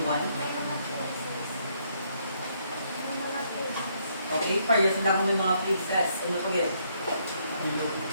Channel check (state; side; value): inverted; both; correlation -0.72